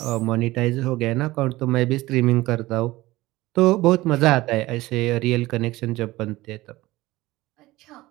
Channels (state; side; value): quieter; left; 18.6 dB